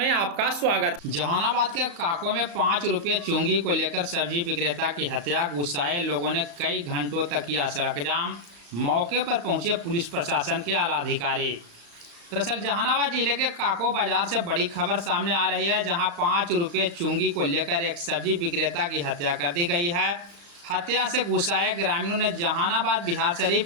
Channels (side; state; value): left; late; 34 ms